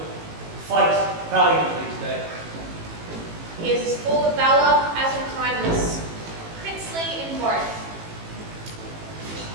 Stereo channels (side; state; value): left; late; 18 ms